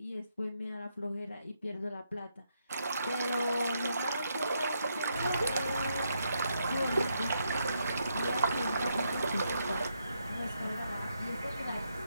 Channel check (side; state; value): both; inverted; correlation -0.79